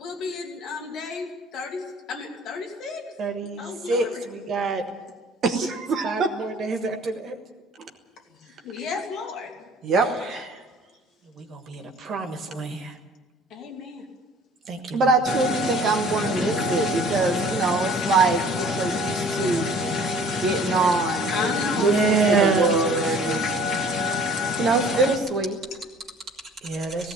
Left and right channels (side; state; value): both; normal; correlation 0.51